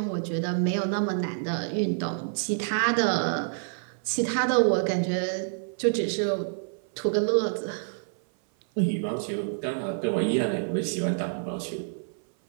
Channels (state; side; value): silent; left; 56 dB below the other